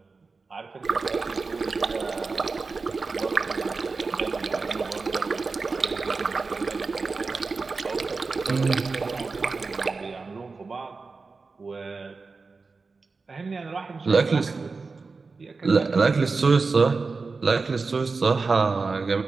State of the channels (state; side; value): quieter; left; 4.2 dB